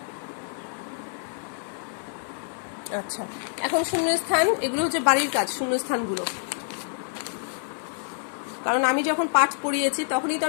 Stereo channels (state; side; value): silent; right; 60 dB below the other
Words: আচ্ছা, এখন শূন্যস্থান, এগুলো হচ্ছে বাড়ির কাজ, শূন্যস্থানগুলো। কারণ আমি যখন পাঠ পড়িয়েছি তখনই তো